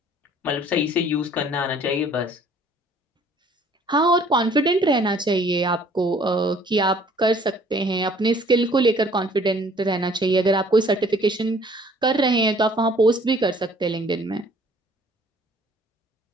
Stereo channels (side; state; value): both; normal; correlation 0.57